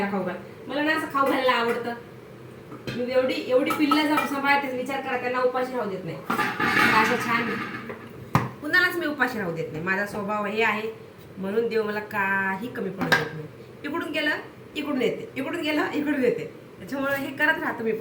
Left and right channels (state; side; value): identical; both; correlation 1.00